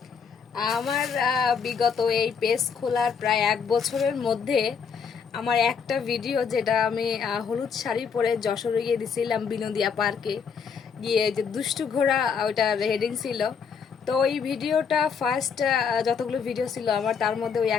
আমার বিগত এই পেজ খোলার প্রায় 1 বছরের মধ্যে আমার একটা ভিডিও, যেটা আমি হলুদ শাড়ি পরে যশোরে গিয়ে দিছিলাম বিনোদিয়া পার্কে গিয়ে, যে দুষ্টু ঘোড়া, ওইটার হেডিং ছিল। তো ওই ভিডিওটা ফার্স্ট যতগুলো ভিডিও ছিল আমার, তার মধ্যে ওই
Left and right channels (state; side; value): quieter; right; 6.3 dB